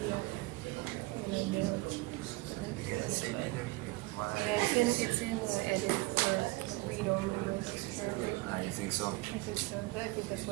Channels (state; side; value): quieter; left; 22.0 dB